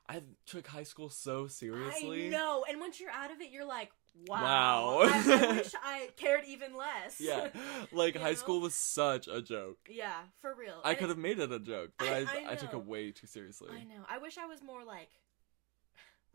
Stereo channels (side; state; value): left; quieter; 26.2 dB